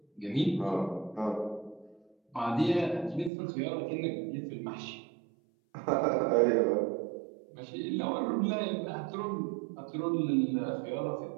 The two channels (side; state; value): left; drops out; at 3.3 s